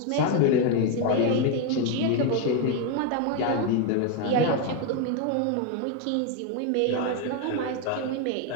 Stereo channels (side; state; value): both; different; correlation 0.01